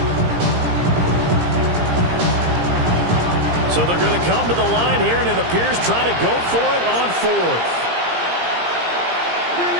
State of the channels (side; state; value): left; late; 17 ms